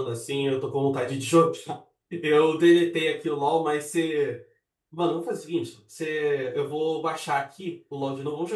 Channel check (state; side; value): identical; both; correlation 1.00